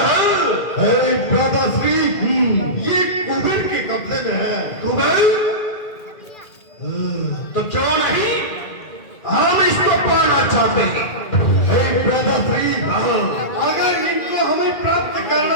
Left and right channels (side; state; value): right; late; 2.0 ms